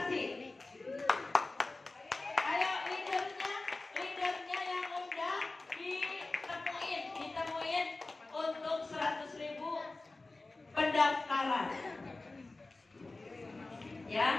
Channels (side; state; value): right; quieter; 3.2 dB